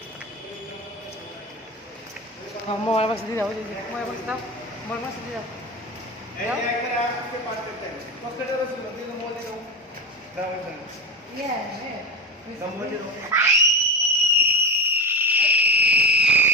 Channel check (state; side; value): normal; both; correlation 0.22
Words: মোবাইল বাক্স দিয়ে দাও মোবাইল বাক্স দাও মোবাইল বাক্স দিয়ে দাও